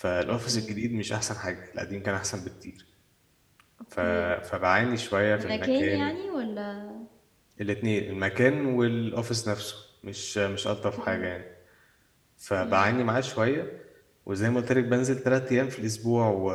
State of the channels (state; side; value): identical; both; correlation 1.00